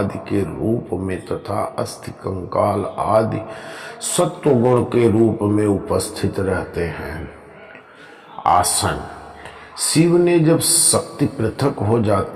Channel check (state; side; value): identical; both; correlation 1.00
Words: के रूप में तथा अस्थि कंकाल आदि सत्व गुण के रूप में उपस्थित रहते हैं। आसन शिव ने जब शक्ति पृथक हो